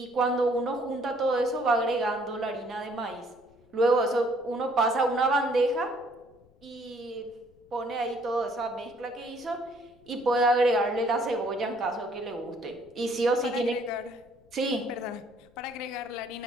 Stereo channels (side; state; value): left; noise; rumble, 30 dB below the sound